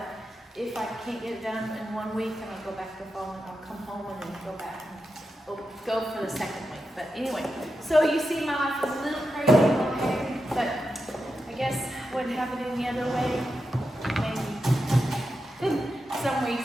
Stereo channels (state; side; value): normal; both; correlation 0.88